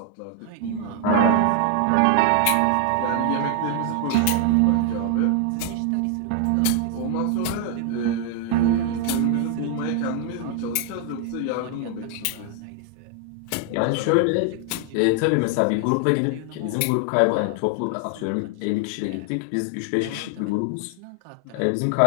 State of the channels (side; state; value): both; different; correlation 0.00